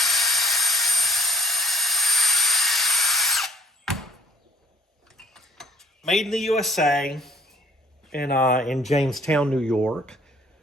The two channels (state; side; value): normal; both; correlation 0.54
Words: Made in the USA in Jamestown, New York.